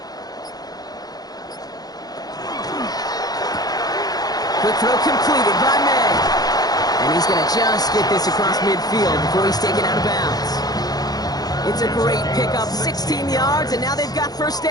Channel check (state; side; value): late; right; 0.19 ms